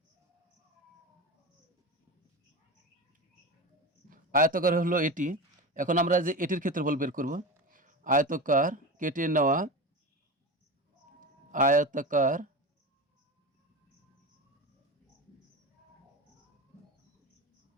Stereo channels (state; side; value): normal; both; correlation 0.25